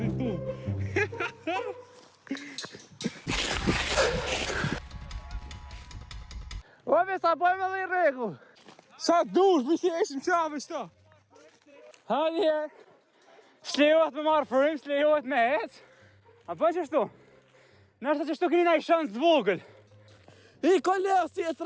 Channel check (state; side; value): identical; both; correlation 1.00